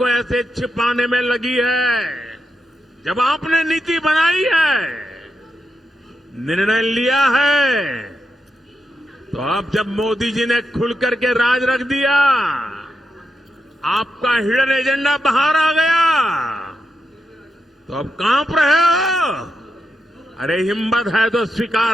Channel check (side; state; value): both; normal; correlation 0.86